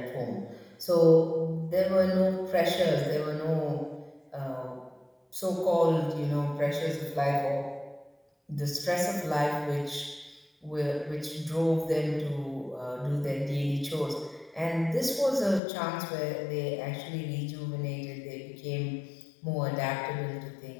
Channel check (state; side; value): drops out; right; at 15.6 s